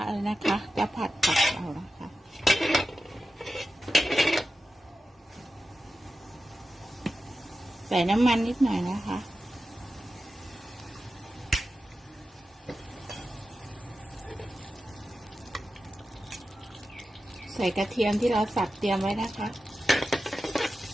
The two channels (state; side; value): normal; both; correlation 0.92